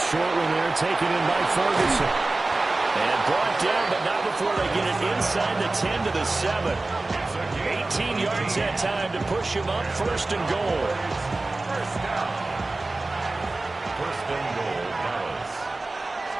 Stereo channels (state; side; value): quieter; left; 3.1 dB